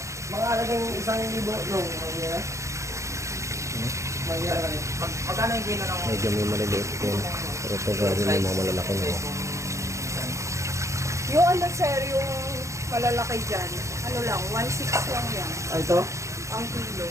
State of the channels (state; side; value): late; left; 0.15 ms